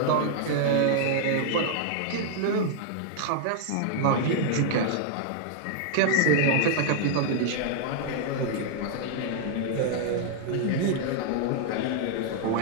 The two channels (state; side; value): different; both; correlation -0.01